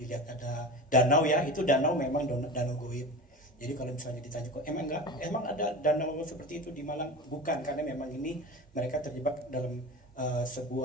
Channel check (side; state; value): both; normal; correlation 0.30